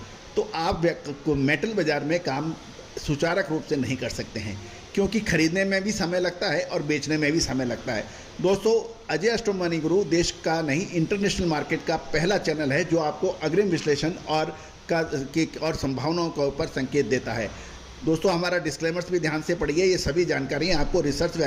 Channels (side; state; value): both; identical; correlation 1.00